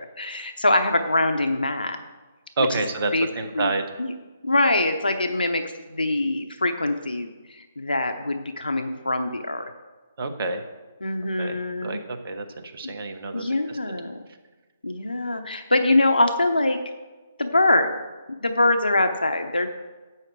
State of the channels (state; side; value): inverted; both; correlation -0.81